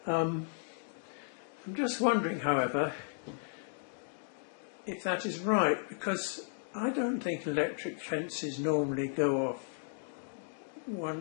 I'm just wondering, however, if that is right, because I don't think electric fences normally go off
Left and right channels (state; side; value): silent; right; digital silence